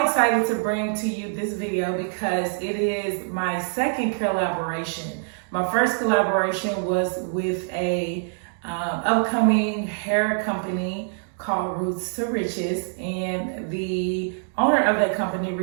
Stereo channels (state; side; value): silent; left; 62 dB below the other